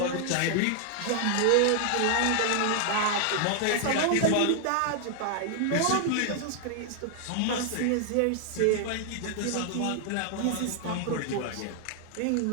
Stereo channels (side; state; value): both; different; correlation 0.00